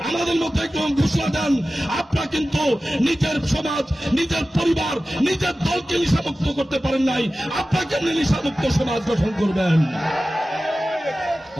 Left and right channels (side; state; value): both; normal; correlation 0.95